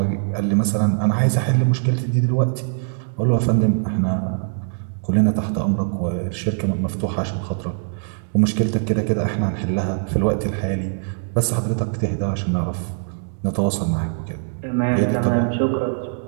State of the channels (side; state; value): left; silent; digital silence